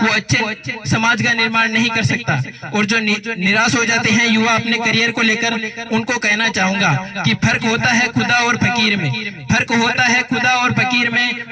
वो अच्छे समाज का निर्माण नहीं कर सकता। और जो निराश हो जाते हैं युवा अपने करियर को लेकर, उनको कहना चाहूंगा कि फर्क होता है खुदा और फकीर में, फर्क होता है खुदा और फकीर में,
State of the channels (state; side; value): identical; both; correlation 1.00